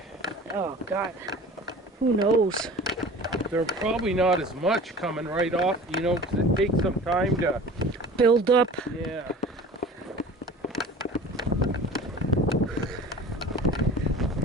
Oh God, who knows? They're probably not as much coming right off, you know, 'cause it takes some time to, Build up. yeah.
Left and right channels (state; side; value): normal; both; correlation 0.41